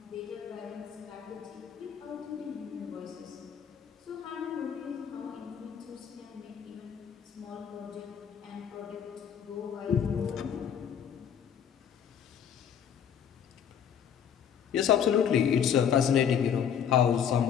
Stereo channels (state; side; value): quieter; right; 8.3 dB